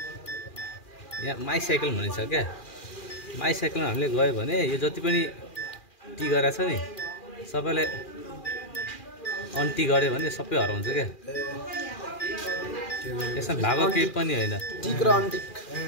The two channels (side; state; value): right; late; 2.4 ms